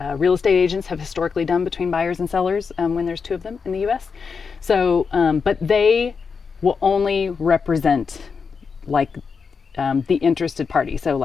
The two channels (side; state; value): right; quieter; 5.5 dB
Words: agents have historically done between buyers and sellers when there's two of them in the US. So, but they will only represent like the interested party. So